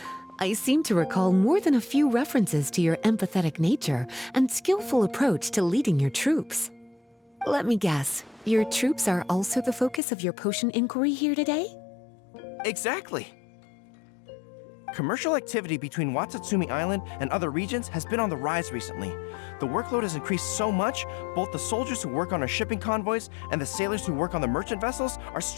I seem to recall more than a few references to your empathetic nature and skillful approach to leading your troops. Let me guess, your troops are also the focus of your potion inquiry here today? Exactly. Commercial activity between Watatsumi Island and other regions has been on the rise recently. The workload has increased so much, both the soldiers who work on our shipping convoys and the sailors who work on the merchant vessels are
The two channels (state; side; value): drops out; right; at 10.0 s